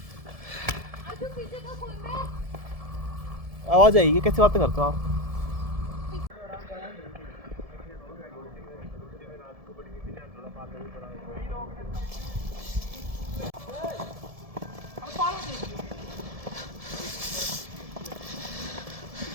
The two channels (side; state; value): left; late; 1.7 ms